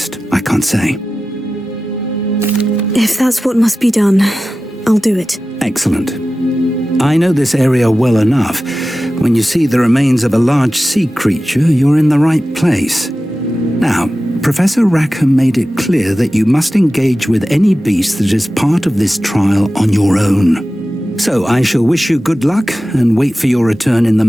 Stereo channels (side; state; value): both; normal; correlation 0.95